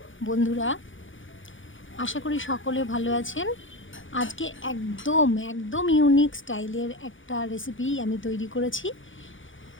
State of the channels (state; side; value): late; right; 0.57 ms